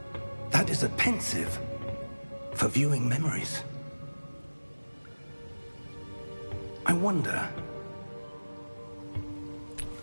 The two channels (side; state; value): both; inverted; correlation -1.00